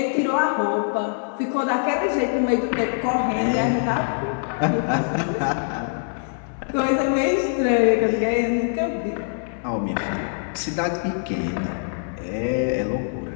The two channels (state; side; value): silent; right; digital silence